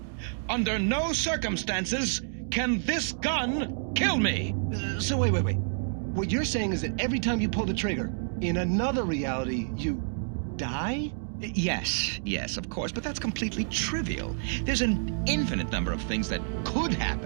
Under no circumstances can this gun kill me. So wait. What you're saying is that every time you pull the trigger, in another reality, you die? Yes, of course, but that's completely trivial. There's an infinite number of things that could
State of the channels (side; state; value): left; silent; digital silence